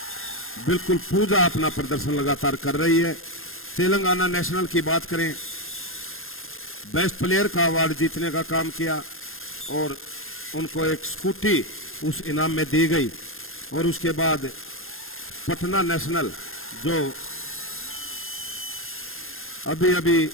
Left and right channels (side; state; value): right; late; 0.60 ms